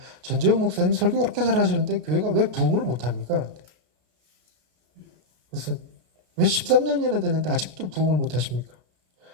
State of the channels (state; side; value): late; left; 33 ms